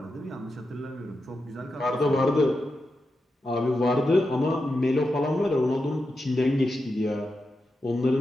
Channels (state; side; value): normal; both; correlation 0.88